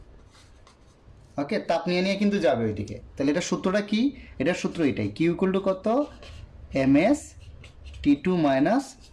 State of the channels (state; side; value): identical; both; correlation 1.00